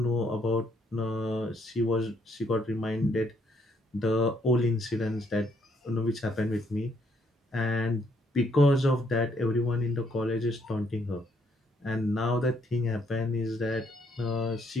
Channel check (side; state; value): both; normal; correlation 0.70